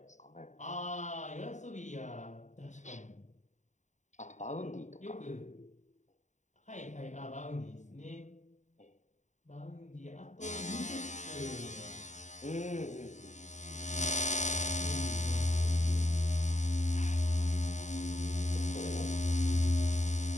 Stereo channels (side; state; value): right; late; 0.35 ms